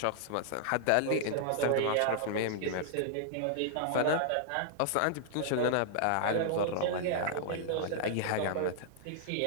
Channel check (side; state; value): both; different; correlation -0.01